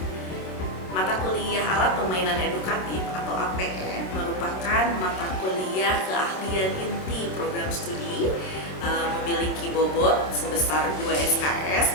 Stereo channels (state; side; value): late; right; 27 ms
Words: Mata kuliah alat permainan edukatif atau APE merupakan mata kuliah keahlian inti program studi, memiliki bobot sebesar 2 SKS